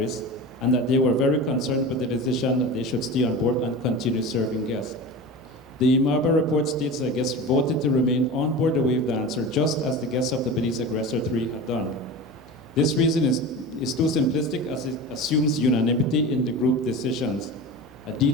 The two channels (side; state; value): both; normal; correlation 0.30